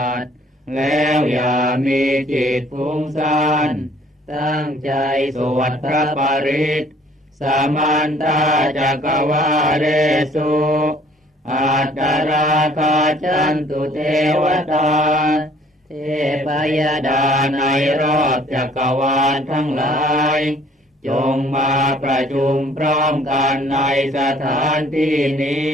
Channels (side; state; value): both; normal; correlation 0.57